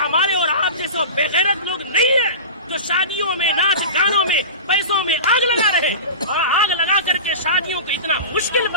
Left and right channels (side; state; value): both; inverted; correlation -0.31